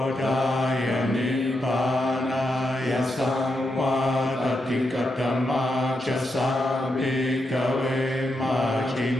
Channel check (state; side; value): normal; both; correlation 0.84